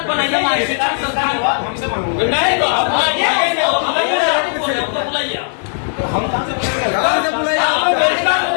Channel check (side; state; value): right; silent; digital silence